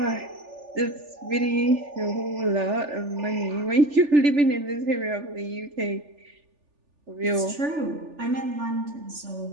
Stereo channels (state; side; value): late; left; 3.4 ms